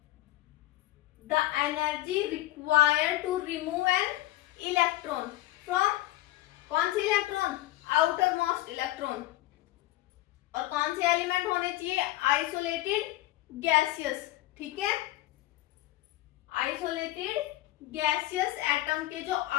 the energy required to remove an electron from, कौन सी इलेक्ट्रॉन, आउटर मोस्ट इलेक्ट्रॉन, और कौन से एलिमेंट होने चाहिए, आइसोलेटेड गैसियस, ठीक है। आइसोलेटेड गैसियस एटम के जो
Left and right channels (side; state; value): right; quieter; 16.6 dB